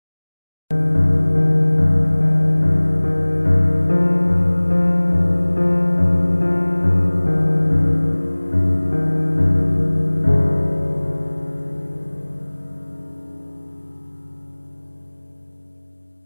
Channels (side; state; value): both; inverted; correlation -1.00